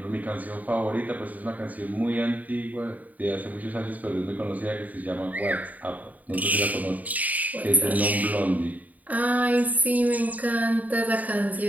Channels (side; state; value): left; late; 0.075 ms